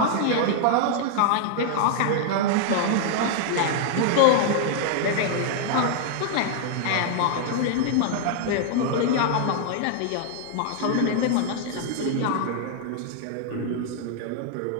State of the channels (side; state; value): both; different; correlation 0.00